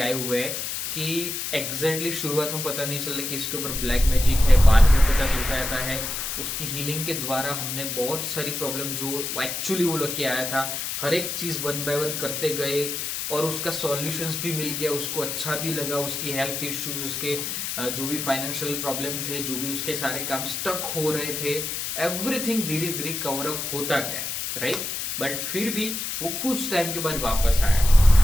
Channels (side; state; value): left; noise; hiss, 4 dB below the sound